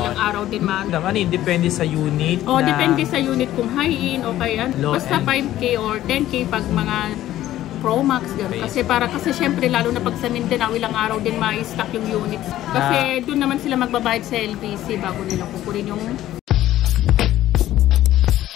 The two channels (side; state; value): right; quieter; 13.7 dB